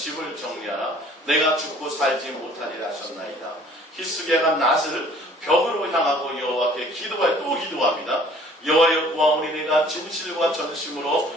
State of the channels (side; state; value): both; normal; correlation 0.54